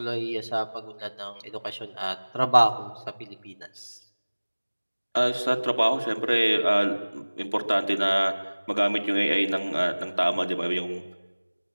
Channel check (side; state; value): both; inverted; correlation -1.00